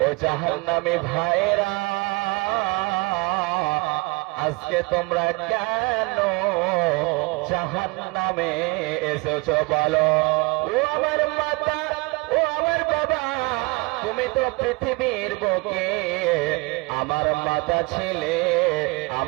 ও জাহান্নামী ভাইরা, আজকে তোমরা কেন জাহান্নামে এসেছো বলো? ও আমার মাতা, ও আমার বাবা, তুমি তো পৃথিবীর বুকে আমার মাতা ছিলে,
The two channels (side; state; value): left; quieter; 26.5 dB